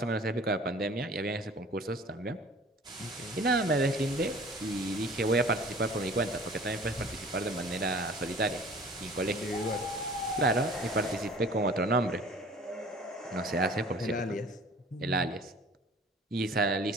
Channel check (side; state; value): both; normal; correlation 0.47